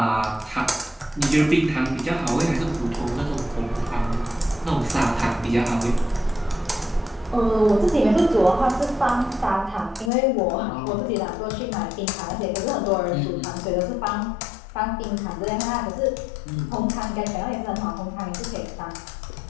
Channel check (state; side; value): drops out; right; at 10.1 s